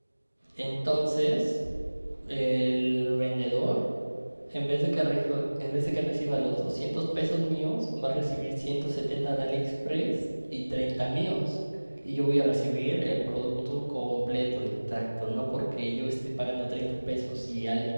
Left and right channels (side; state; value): both; inverted; correlation -1.00